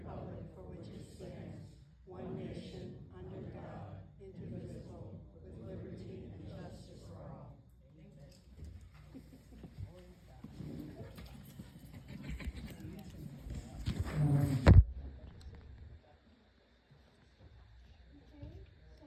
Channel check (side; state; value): both; identical; correlation 1.00